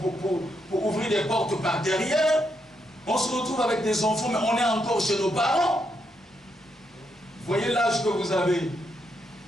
ouvrir des portes par derrière. On se retrouve avec des enfants, mais on est encore chez nos parents. Voyez l'âge que vous avez.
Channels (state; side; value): normal; both; correlation 0.79